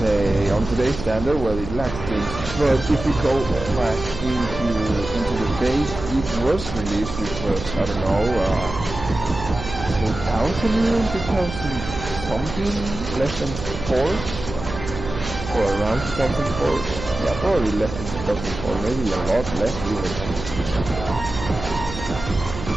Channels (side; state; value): right; noise; hum, 9 dB below the sound